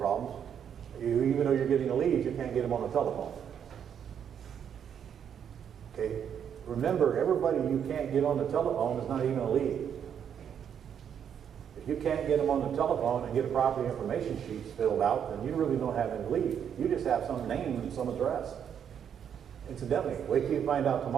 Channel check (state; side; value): quieter; left; 8.4 dB